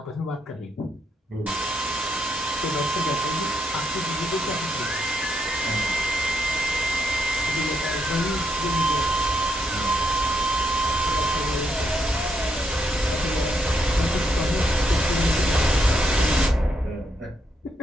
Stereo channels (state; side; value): normal; both; correlation 0.77